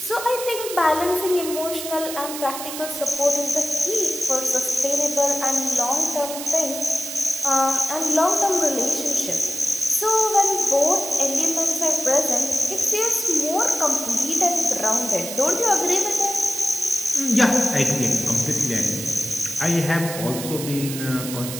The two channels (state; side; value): noise; right; hiss, 8 dB below the sound